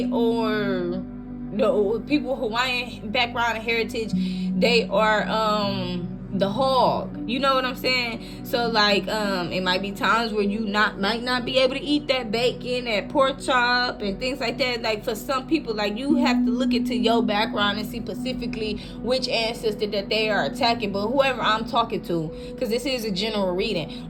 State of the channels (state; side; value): identical; both; correlation 1.00